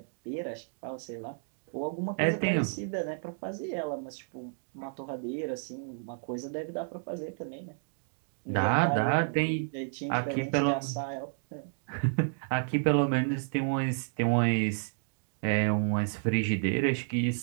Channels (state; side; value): silent; left; digital silence